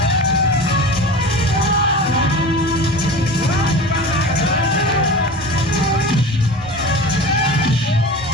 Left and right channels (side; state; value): both; normal; correlation 0.34